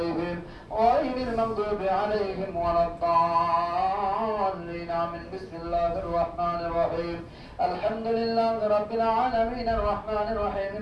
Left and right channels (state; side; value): identical; both; correlation 1.00